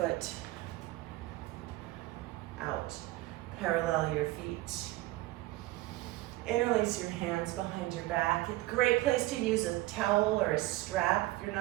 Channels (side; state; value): left; quieter; 18.3 dB